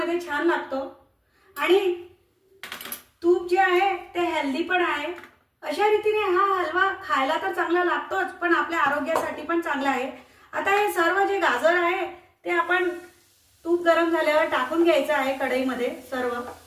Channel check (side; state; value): both; identical; correlation 1.00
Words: छान लागतो आणि तूप जे आहे ते हेल्दी पण आहे। अशा रीतीने हा हलवा खायला तर चांगला लागतोच, पण आपल्या आरोग्यासाठी पण चांगला आहे। आता हे सर्व जे गाजर आहे ते आपण तूप गरम झाल्यावर टाकून घ्यायचं आहे कढईमध्ये सर्व।